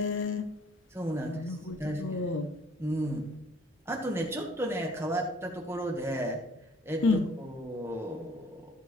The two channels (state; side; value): normal; both; correlation 0.57